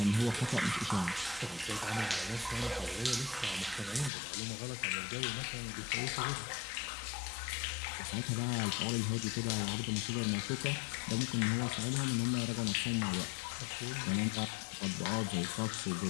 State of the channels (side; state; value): right; drops out; at 4.1 s